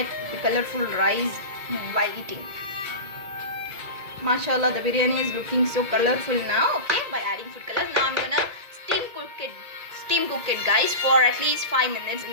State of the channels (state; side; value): late; left; 2.0 ms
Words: the colorful rice while eating. Mashallah, the biryani is looking so colorful now. Okay, by adding food color. Now I'm gonna steam cook it guys for at least 5 minutes in